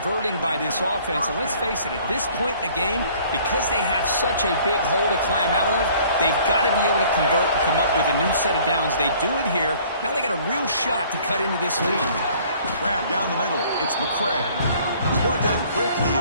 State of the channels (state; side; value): inverted; both; correlation -0.55